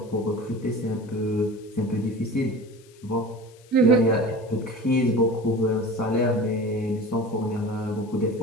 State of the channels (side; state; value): left; noise; hiss, 28 dB below the sound